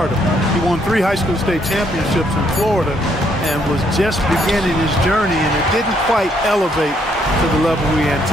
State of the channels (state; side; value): normal; both; correlation 0.71